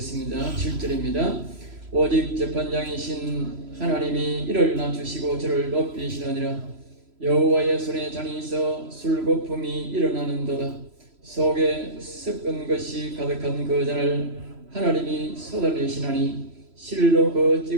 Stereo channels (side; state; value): left; late; 3.0 ms